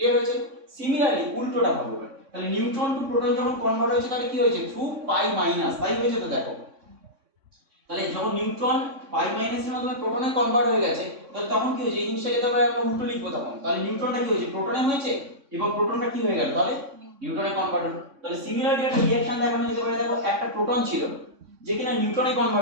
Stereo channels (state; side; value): late; left; 3.6 ms